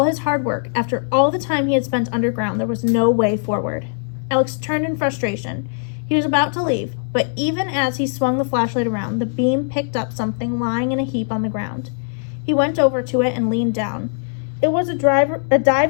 his hard work, after all the time he had spent underground, there was no way forward. Alex turned in frustration. He was about to leave, but even as he swung the flashlight around, the beam picked up something lying in a heap on the ground. He went over to it and leaned down. It was a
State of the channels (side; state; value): right; silent; digital silence